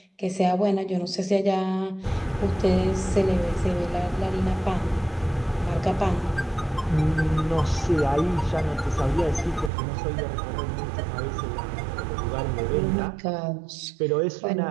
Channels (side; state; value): left; drops out; at 9.7 s